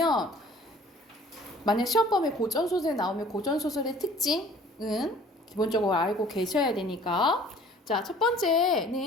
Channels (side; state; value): both; normal; correlation 0.52